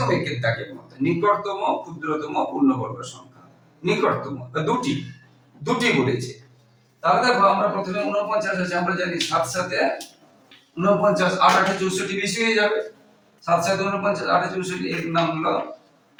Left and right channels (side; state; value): both; identical; correlation 1.00